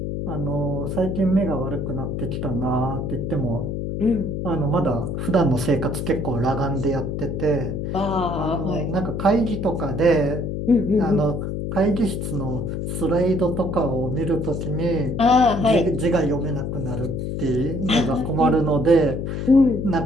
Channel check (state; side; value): noise; left; hum, 3 dB below the sound